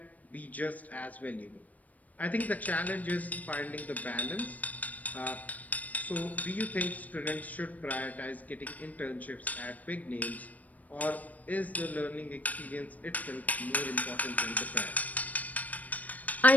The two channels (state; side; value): late; right; 0.074 ms